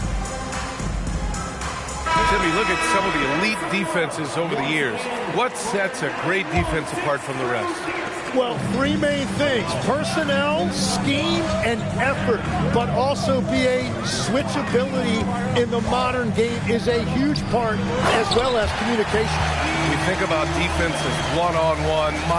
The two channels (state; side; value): identical; both; correlation 1.00